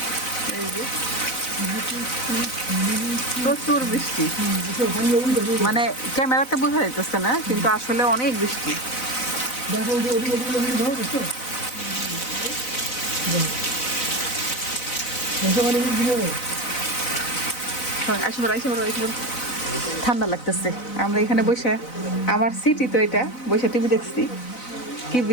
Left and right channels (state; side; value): late; right; 4.0 ms